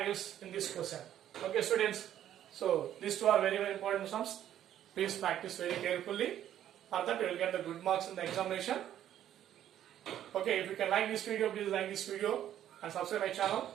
in this question. Okay students, so these two are very important sums. Please practice very carefully. For that you will get the good marks in the examination. Okay, if you can like this video, please like this video and subscribe my channel,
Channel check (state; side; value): quieter; left; 11.2 dB